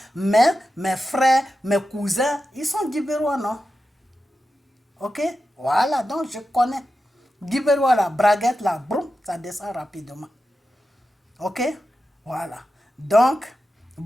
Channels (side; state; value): both; normal; correlation 0.91